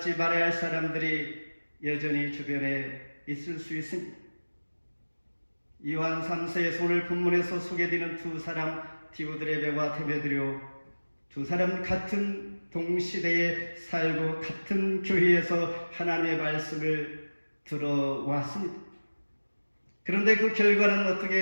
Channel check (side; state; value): both; inverted; correlation -1.00